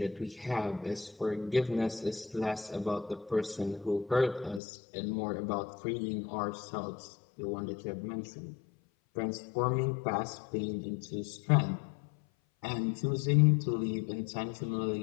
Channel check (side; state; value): right; drops out; at 4.6 s